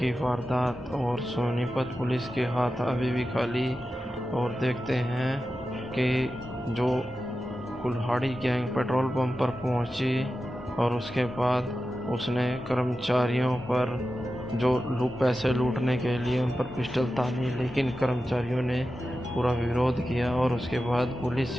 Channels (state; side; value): normal; both; correlation 0.92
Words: वारदात और सोनीपत पुलिस के हाथ अभी भी खाली, और देखते हैं कि जो कुल्हाड़ी गैंग पेट्रोल पंप पर पहुंची और उसके बाद उसने कर्मचारियों पर जो पैसे लूटने के लिए उन पर पिस्टल तानी, लेकिन कर्मचारियों ने पूरा विरोध किया और उसके बाद